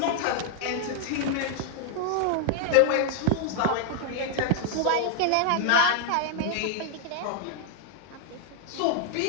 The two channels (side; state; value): both; different; correlation 0.00